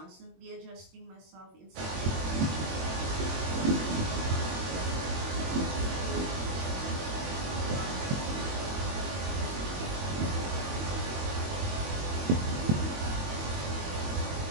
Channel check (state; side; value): late; left; 22 ms